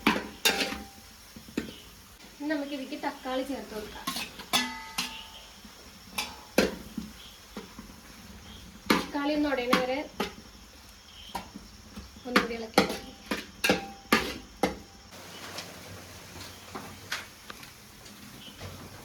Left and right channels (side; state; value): both; identical; correlation 1.00